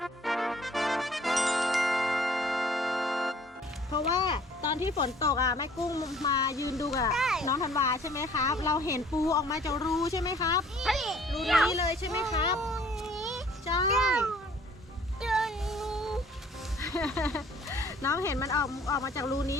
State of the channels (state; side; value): normal; both; correlation 0.55